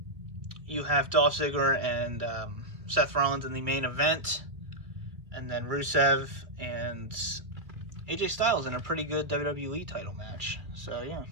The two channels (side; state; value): left; late; 2.3 ms